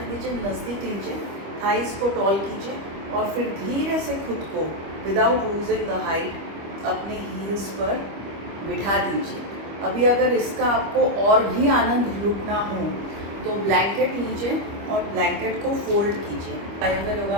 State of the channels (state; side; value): late; left; 25 ms